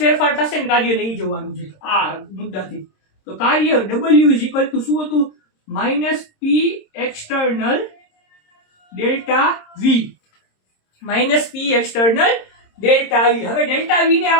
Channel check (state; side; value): late; right; 26 ms